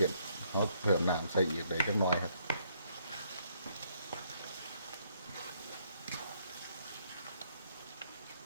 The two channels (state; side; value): inverted; both; correlation -0.70